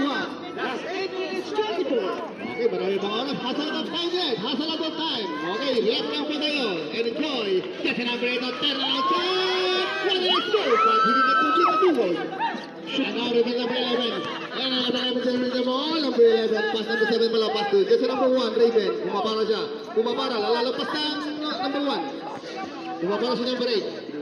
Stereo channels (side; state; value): both; identical; correlation 1.00